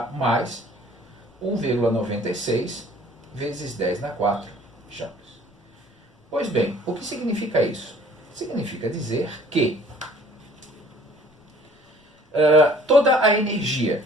mais 1,96 vezes 10 na 4 joules. Pois bem, o que significa isso? Significa dizer que toda a energia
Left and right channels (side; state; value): both; normal; correlation 0.53